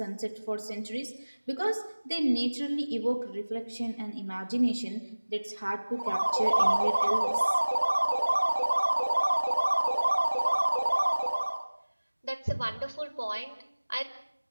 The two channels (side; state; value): both; inverted; correlation -1.00